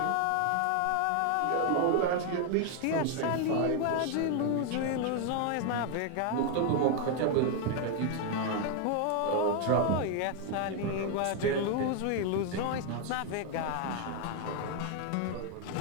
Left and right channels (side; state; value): both; different; correlation 0.01